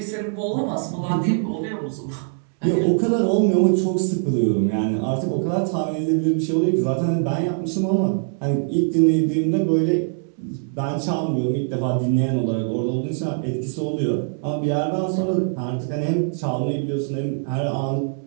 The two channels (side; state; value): left; silent; 64 dB below the other